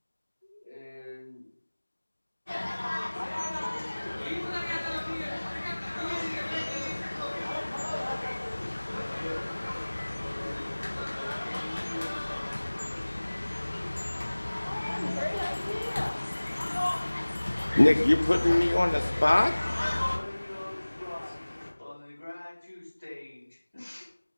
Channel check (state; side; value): inverted; both; correlation -1.00